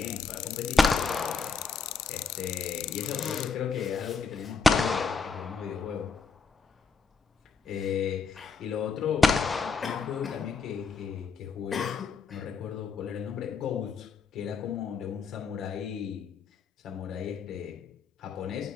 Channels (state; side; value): quieter; right; 5.1 dB